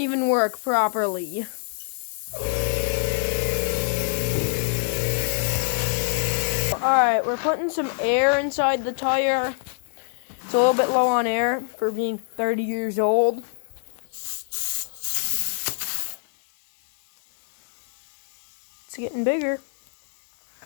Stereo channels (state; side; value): silent; right; digital silence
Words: work properly. Alright, we're putting some air inside the tire. It's a little bit low on air for being 30 years old. It's getting bigger.